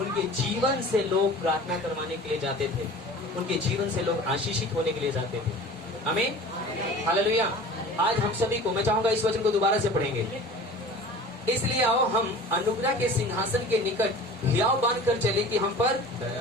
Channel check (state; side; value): normal; both; correlation 0.41